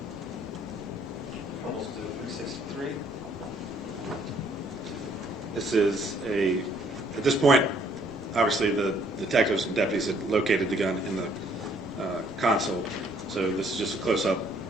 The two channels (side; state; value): both; normal; correlation 0.64